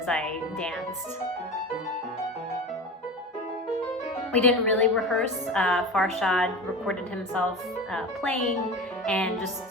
I danced. We didn't really rehearse. Farshad recorded himself playing and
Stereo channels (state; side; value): normal; both; correlation 0.30